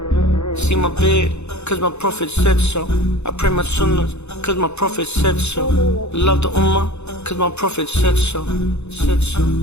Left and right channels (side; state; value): right; late; 0.81 ms